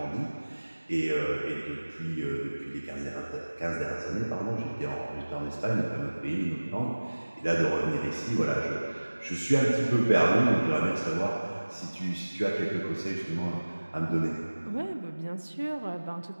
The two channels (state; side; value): inverted; both; correlation -1.00